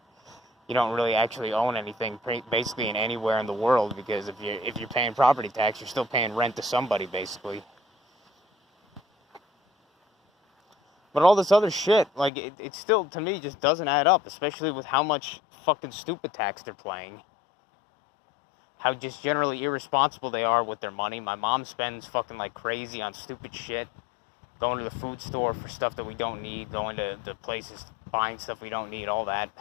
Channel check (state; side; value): drops out; right; at 12.3 s